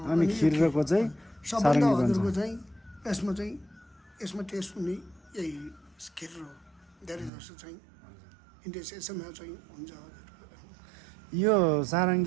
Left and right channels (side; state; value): left; drops out; at 7.3 s